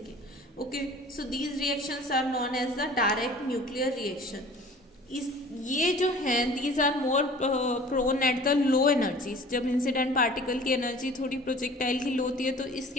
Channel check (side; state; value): both; normal; correlation 0.46